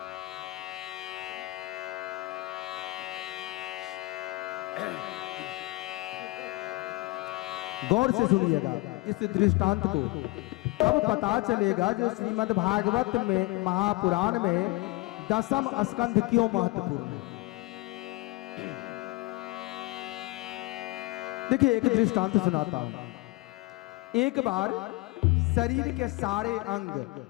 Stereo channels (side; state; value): right; quieter; 21.6 dB